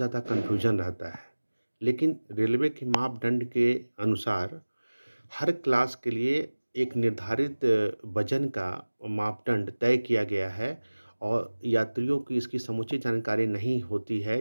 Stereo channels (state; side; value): inverted; both; correlation -1.00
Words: कन्फ्यूजन रहता है। लेकिन रेलवे के मापदंड के अनुसार हर क्लास के लिए एक निर्धारित वजन का मापदंड तय किया गया है और यात्रियों की इसकी समुचित जानकारी नहीं होती